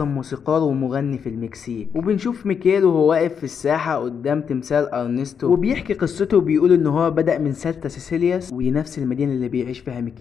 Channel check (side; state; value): right; quieter; 7.0 dB